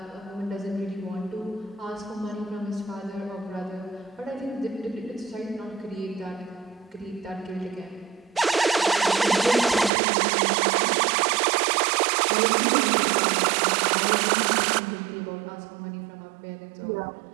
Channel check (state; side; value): drops out; left; at 9.9 s